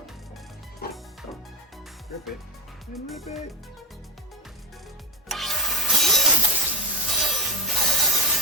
Rip it and rip it.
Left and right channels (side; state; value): both; normal; correlation 0.13